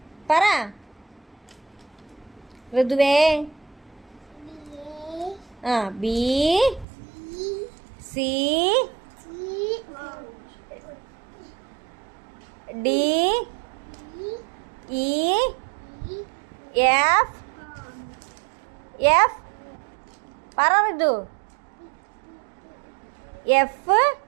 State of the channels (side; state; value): left; drops out; at 6.9 s